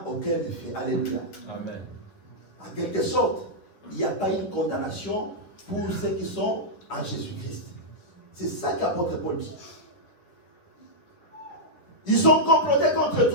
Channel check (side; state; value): right; late; 10 ms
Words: aucun effet. Alléluia. Amen. En quelque sorte, il n'y a pas une condamnation pour ceux qui sont en Jésus-Christ. C'est ça qu'apôtre Paul dit. Ils sont complotés contre